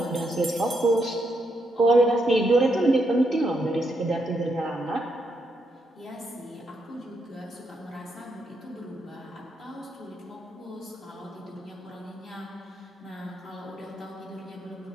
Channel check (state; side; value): normal; both; correlation 0.79